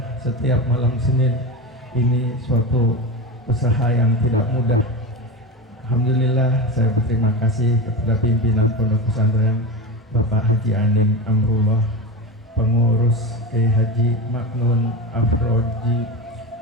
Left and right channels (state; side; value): normal; both; correlation 0.22